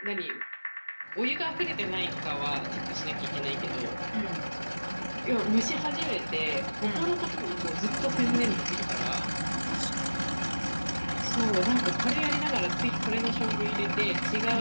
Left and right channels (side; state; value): both; inverted; correlation -1.00